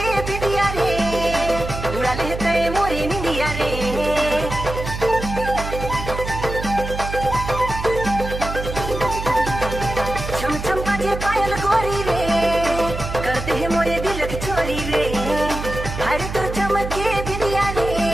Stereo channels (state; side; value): noise; right; hum, 7 dB below the sound